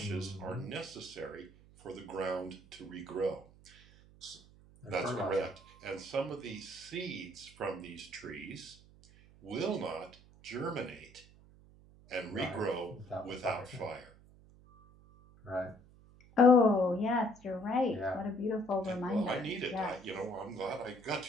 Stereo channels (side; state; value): right; noise; hum, 24 dB below the sound